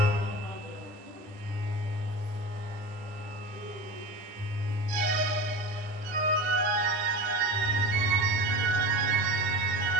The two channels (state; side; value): late; left; 10 ms